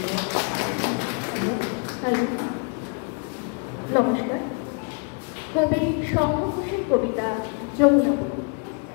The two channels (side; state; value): right; quieter; 37.9 dB